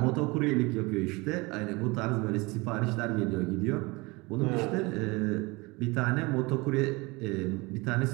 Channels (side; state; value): left; quieter; 24.9 dB